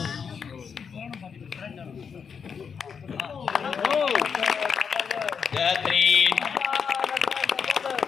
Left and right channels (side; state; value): right; quieter; 6.5 dB